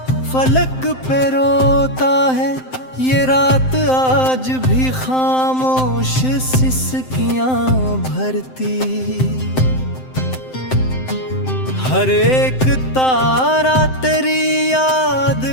फलक पे रोता है, ये रात आज भी खामोश सिसकियां भरती। हर एक तारा तेरी याद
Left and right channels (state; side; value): late; right; 7.7 ms